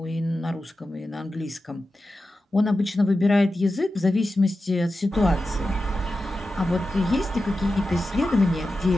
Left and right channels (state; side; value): normal; both; correlation 0.92